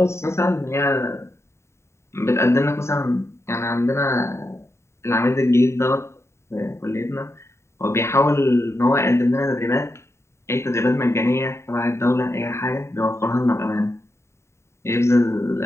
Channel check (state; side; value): late; right; 0.13 ms